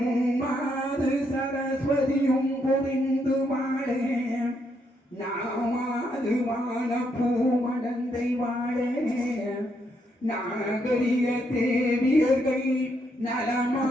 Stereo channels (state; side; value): normal; both; correlation 0.76